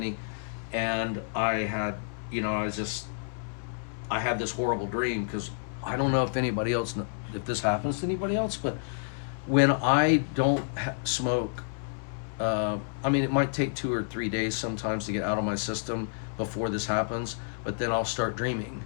and I had, I had this horrible dream, because I don't know if anybody else, if this happens to anybody else, but when I don't smoke, it might take 2 or 3 days sometimes to get out of my system before this happens, but then I'll start dreaming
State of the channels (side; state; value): right; silent; 58 dB below the other